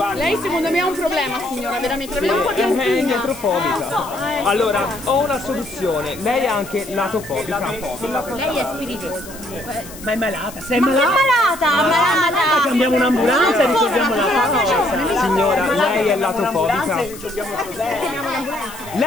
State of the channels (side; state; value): left; noise; hiss, 16 dB below the sound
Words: Lei secondo me ha un problema, signora, veramente. L'abbiamo un po' di È angina. indietrofobica. Allora, ho una soluzione. Lei è anche latofobica. Lei è spiritoso. Ma è malata, sei Ma che malata? malata? Chiamiamo un'ambulanza e risolviamo la cosa. Signora, lei è latofobica.